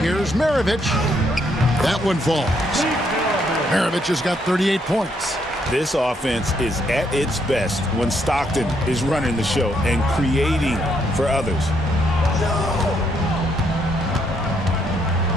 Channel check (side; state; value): both; normal; correlation 0.73